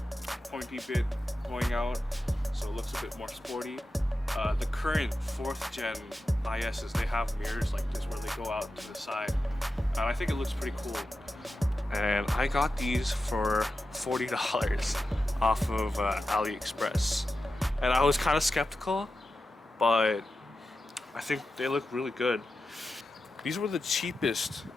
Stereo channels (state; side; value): normal; both; correlation 0.91